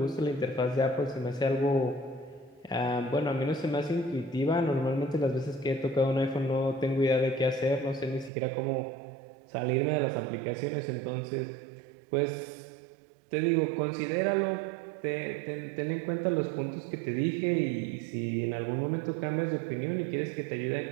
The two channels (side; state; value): left; drops out; at 8.3 s